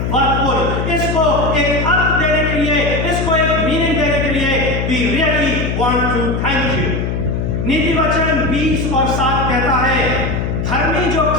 worthful. इसको एक अर्थ देने के लिए, इसको एक मीनिंग देने के लिए we really want to thank you. नीति वचन 20 और 7 कहता है, धर्मी जो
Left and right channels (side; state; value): left; noise; hum, 1 dB below the sound